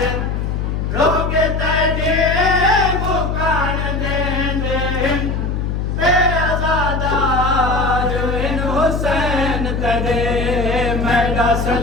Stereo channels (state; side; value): noise; left; hum, 1 dB below the sound